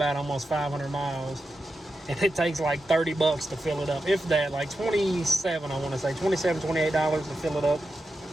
almost 500 miles. And it takes like $30 to fill it up. If that, like 27, I want to say. $27, $28 to fill it up.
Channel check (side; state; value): both; normal; correlation 0.90